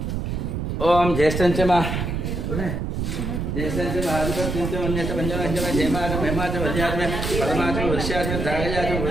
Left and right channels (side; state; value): right; noise; rumble, 2 dB below the sound